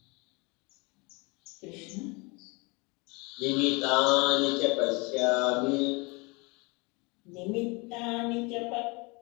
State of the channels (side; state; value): right; quieter; 28.1 dB